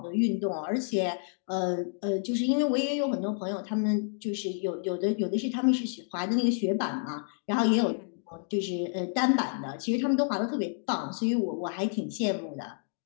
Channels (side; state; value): right; silent; digital silence